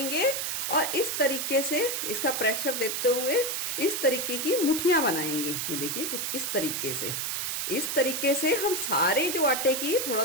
और इस तरीके से इसका प्रेशर देते हुए इस तरीके की मुठियां बनाएंगे। ये देखिए कुछ इस तरीके से। इस तरीके से हम सारे जो आटे की थोड़ा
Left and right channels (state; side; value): noise; right; hiss, 1 dB below the sound